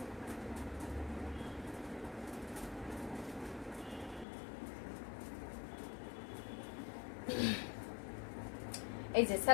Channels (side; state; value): right; drops out; at 4.2 s